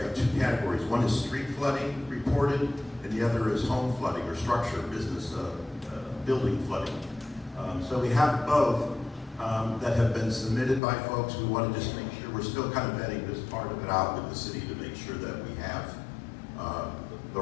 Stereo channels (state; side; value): drops out; right; at 10.8 s